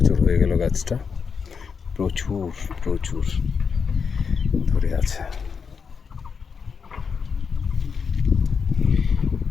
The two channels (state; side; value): quieter; right; 5.9 dB